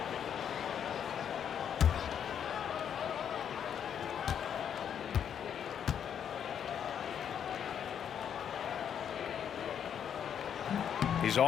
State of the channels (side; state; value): right; quieter; 8.5 dB